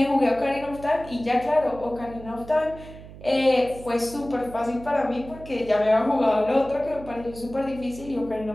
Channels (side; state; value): right; noise; hum, 16 dB below the sound